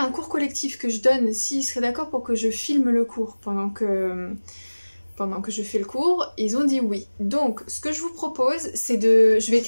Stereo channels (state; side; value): inverted; both; correlation -1.00